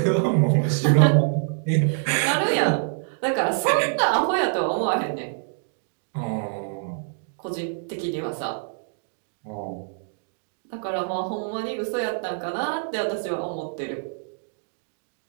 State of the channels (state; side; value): silent; left; digital silence